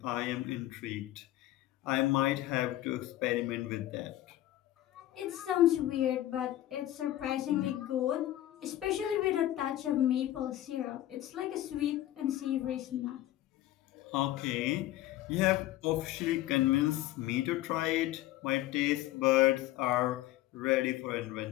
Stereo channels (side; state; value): right; quieter; 14.6 dB